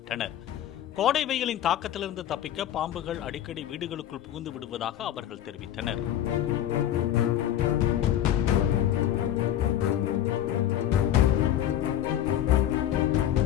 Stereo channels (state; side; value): quieter; right; 11.4 dB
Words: கோடை வெயிலின் தாக்கத்திலிருந்து தப்பிக்க பாம்புகள் அடிக்கடி வீடுகளுக்குள் புகுந்து விடுவதாக அவர்கள் தெரிவித்தனர்.